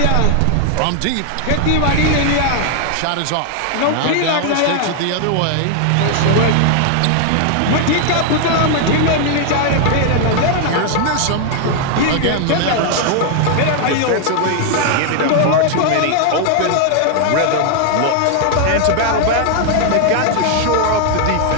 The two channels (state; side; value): different; both; correlation 0.00